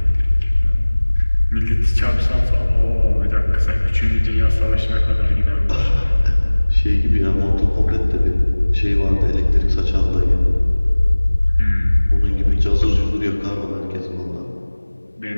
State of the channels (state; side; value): inverted; both; correlation -1.00